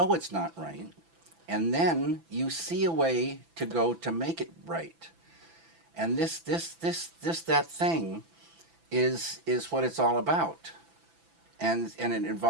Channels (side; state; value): left; late; 6.0 ms